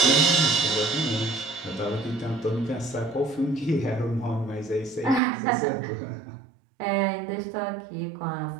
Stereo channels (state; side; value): drops out; left; at 5.2 s